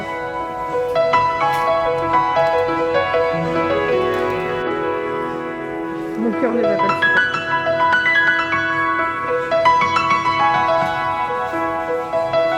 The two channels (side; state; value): both; identical; correlation 1.00